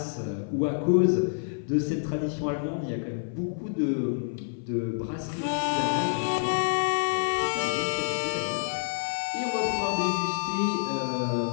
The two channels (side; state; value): right; silent; 55 dB below the other